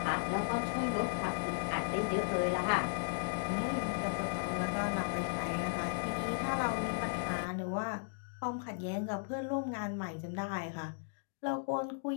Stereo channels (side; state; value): right; silent; digital silence